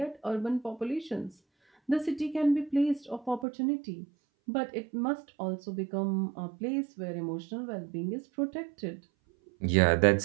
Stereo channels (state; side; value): drops out; left; at 3.5 s